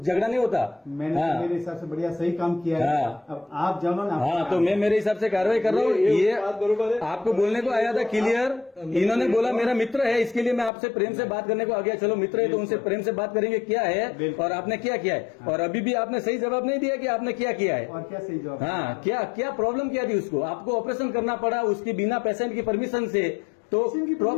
नहीं होता। मैंने तो मेरे हिसाब से बढ़िया सही काम किया है। अब आप जानो ना। हाँ तो मैं मेरे हिसाब से कार्रवाई कर रहा हूँ। ये आपको बोलने को आया था क्लियर। इन्होंने बोला मेरा मित्र है, इसके लिए मैं आपसे प्रेम से बात करने को आ गया। चलो मित्र है तो उनसे प्रेम से बात करेंगे क्या है और आपने क्या किया है। और अभी भी आपने सही जवाब नहीं दिया कि आपने क्या किया है और क्या सही जवाब। हाँ क्या प्रॉब्लम क्या थी उसको? आपको ऑपरेशन करना पड़ा उसकी बिना पेशेंट की परमिशन से। तो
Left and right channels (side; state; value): right; drops out; at 10.7 s